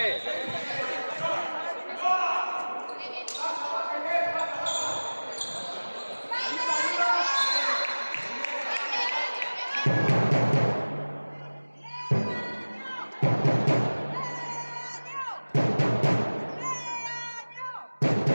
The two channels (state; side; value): inverted; both; correlation -1.00